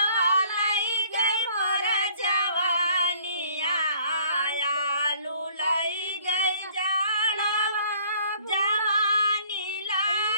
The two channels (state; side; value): inverted; both; correlation -0.58